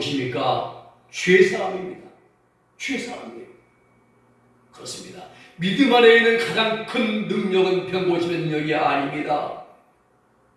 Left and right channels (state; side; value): identical; both; correlation 1.00